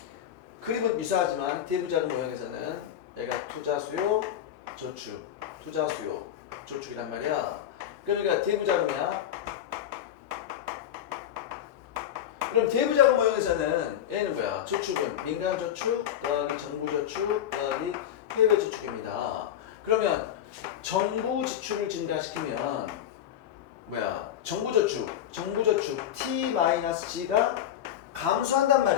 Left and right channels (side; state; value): right; quieter; 10.6 dB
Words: 그림은 유사하지만 대부자금 모형에서는 얘가 투자 수요, 저축, 투자 수요, 저축이란 말이야. 그러니까 대부자금이야. 그럼 대부자금 모형에서는 얘는 뭐야? 저축은 민간 저축 더하기 정부 저축 더하기 해외 저축입니다. 그러면 정부 지출을 증가시키면 뭐야? 정부 저축 T-G가 감소한단